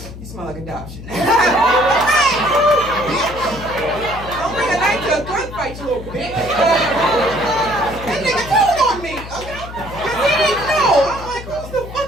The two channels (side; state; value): left; noise; hum, 13 dB below the sound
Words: you smell like adoption. Don't bring a knife to a gunfight, you little bitch. That nigga told on me, okay? Because he didn't know. I'm like, who's the